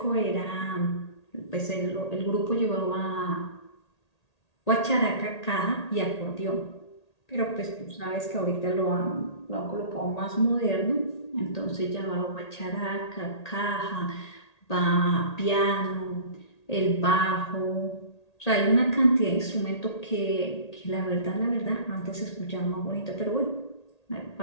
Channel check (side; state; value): right; late; 1.8 ms